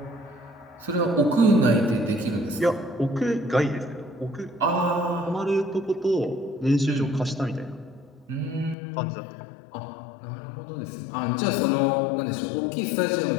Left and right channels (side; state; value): right; drops out; at 8.8 s